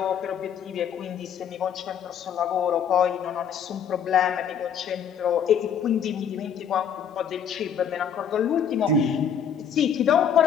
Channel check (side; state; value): right; quieter; 7.8 dB